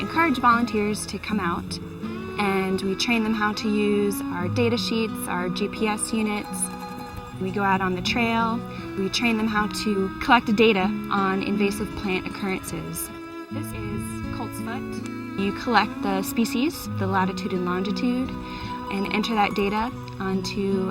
encourage volunteers to come out, and we train them how to use our data sheets, our GPS units. We go out on the trail. We train them how to collect data on invasive plant occurrences. This is coltsfoot. You collect the species, the latitude and longitude, and enter that data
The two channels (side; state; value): both; identical; correlation 1.00